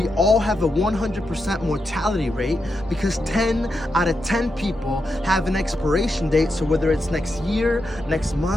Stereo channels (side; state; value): both; normal; correlation 0.86